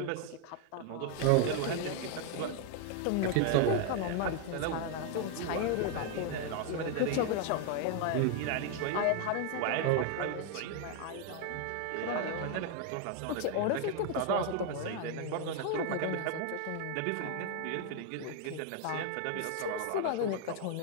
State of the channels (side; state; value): both; different; correlation 0.01